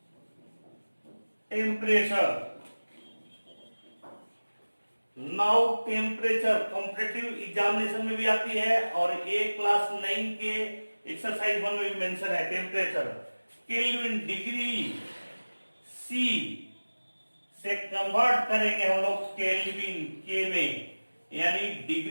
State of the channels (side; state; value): both; inverted; correlation -1.00